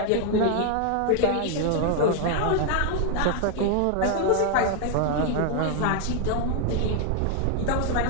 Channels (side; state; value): both; different; correlation 0.00